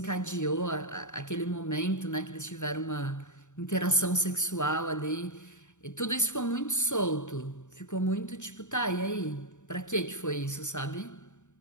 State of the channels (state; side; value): late; right; 0.84 ms